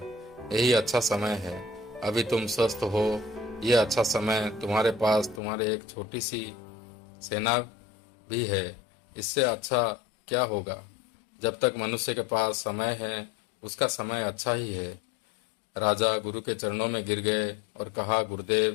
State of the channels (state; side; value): drops out; right; at 5.4 s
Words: यही अच्छा समय है। अभी तुम स्वस्थ हो, यह अच्छा समय। तुम्हारे पास तुम्हारे एक छोटी सी सेना भी है, इससे अच्छा क्या होगा। जब तक मनुष्य के पास समय है, उसका समय अच्छा ही है। राजा गुरु के चरणों में गिर गए और कहा,